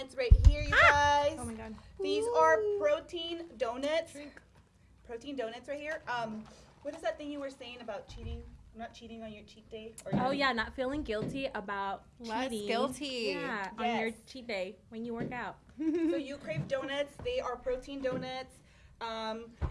right here, you guys. Oh my god. These are protein donuts. Protein donuts right here. What is that thing you were saying about cheating? Not cheating on your cheat day? Or Oh yeah, not feeling guilty about cheating. Guilty. Yeah, on Yes. your cheat day when you work out. So You Crave Donuts. They are protein donuts.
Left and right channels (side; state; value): both; identical; correlation 1.00